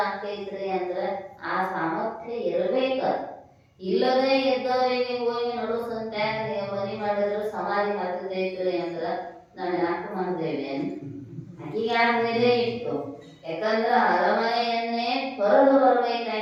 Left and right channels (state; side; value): identical; both; correlation 1.00